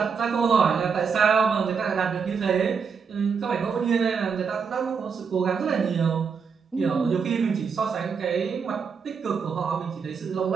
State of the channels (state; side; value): quieter; left; 6.0 dB